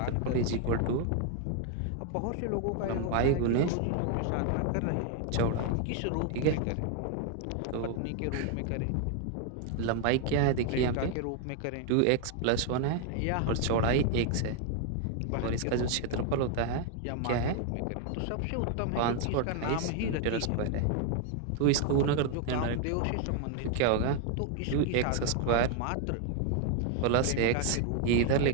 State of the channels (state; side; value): different; both; correlation 0.00